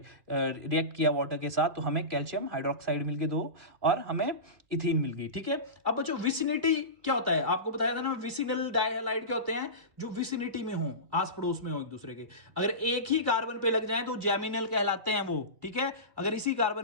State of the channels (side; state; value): left; late; 2.4 ms